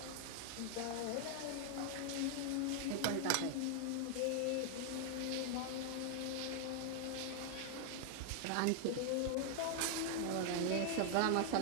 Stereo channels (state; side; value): different; both; correlation 0.00